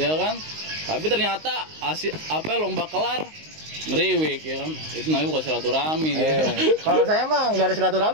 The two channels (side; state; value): left; late; 19 ms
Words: kan? Tapi ternyata lomba kelar ngeriwik, ya kan? Itu namanya bukan silaturahmi. Kalau saya mah nggak ada